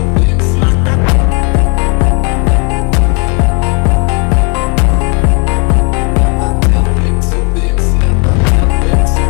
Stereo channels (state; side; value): quieter; right; 33.7 dB